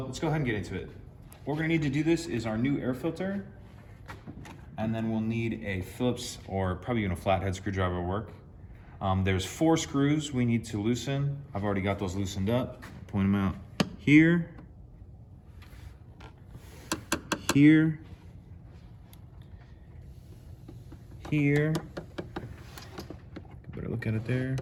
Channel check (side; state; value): both; identical; correlation 1.00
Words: go ahead and get into it. What we're gonna need to do this is our new air filter, and then we'll need a Phillips or probably even a flathead screwdriver will work. There's 4 screws we need to loosen. I've already got those loosened up. Point them out here, here, here. Better look at it there,